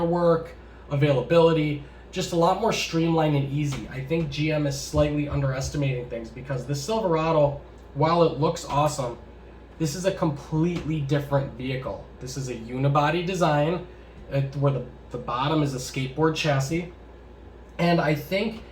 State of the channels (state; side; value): identical; both; correlation 1.00